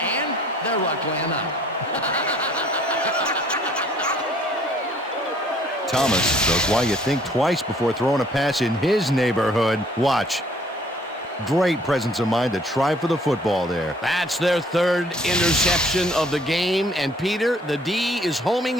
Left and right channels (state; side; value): normal; both; correlation 0.59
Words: their luck ran out. Thomas knows why you think twice before throwing a pass in his neighborhood. Watch. Great presence of mind to try for the football there. That's their 3rd interception of the game, and Peter, the D is homing